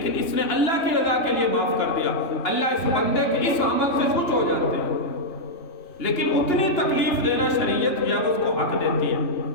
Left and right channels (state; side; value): late; right; 2.8 ms